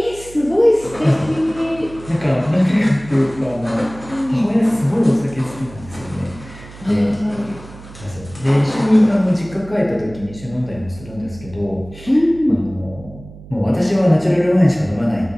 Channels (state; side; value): noise; right; hum, 18 dB below the sound